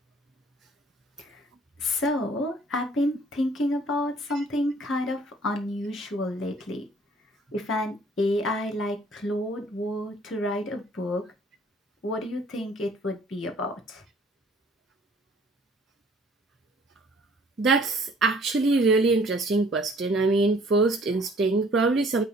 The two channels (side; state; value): both; normal; correlation 0.57